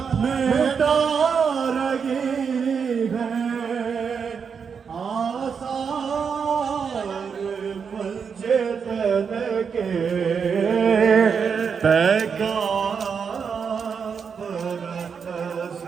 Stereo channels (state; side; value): quieter; left; 6.3 dB